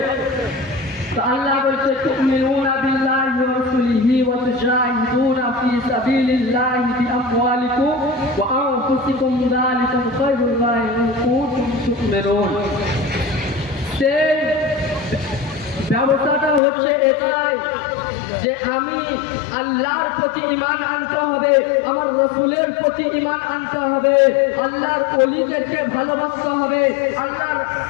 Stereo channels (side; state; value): right; drops out; at 16.6 s